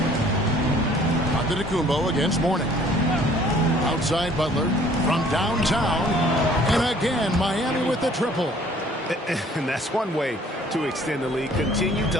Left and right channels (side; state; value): both; normal; correlation 0.56